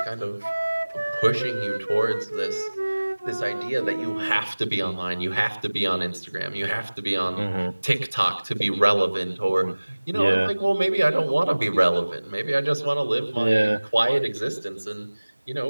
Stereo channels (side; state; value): both; inverted; correlation -1.00